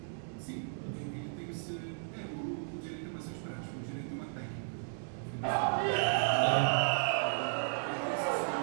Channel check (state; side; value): silent; left; digital silence